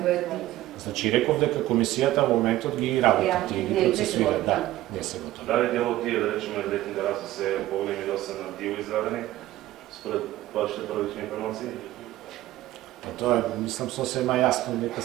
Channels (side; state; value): left; quieter; 15.5 dB